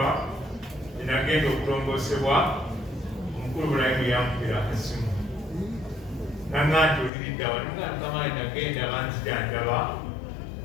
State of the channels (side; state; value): right; drops out; at 7.1 s